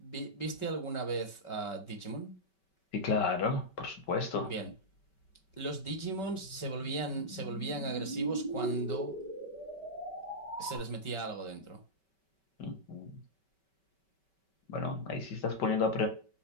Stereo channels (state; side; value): late; right; 5.2 ms